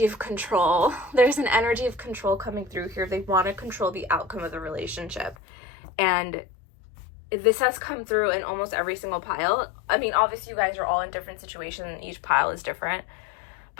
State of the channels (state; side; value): drops out; right; at 5.4 s